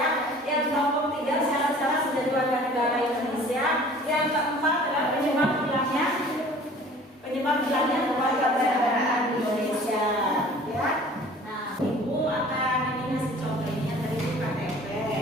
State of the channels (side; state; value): both; normal; correlation 0.48